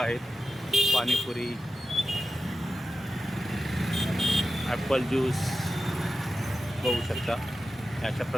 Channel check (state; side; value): normal; both; correlation 0.92